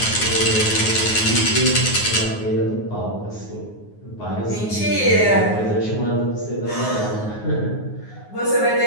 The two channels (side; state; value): right; late; 9.5 ms